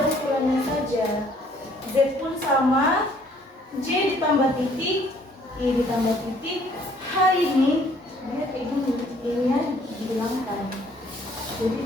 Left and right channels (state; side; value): normal; both; correlation 0.61